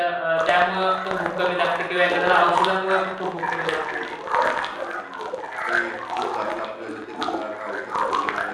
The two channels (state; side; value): identical; both; correlation 1.00